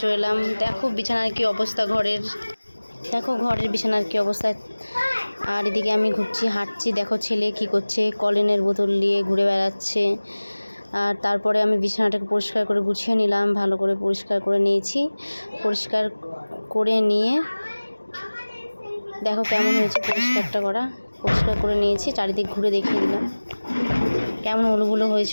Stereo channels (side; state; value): both; inverted; correlation -1.00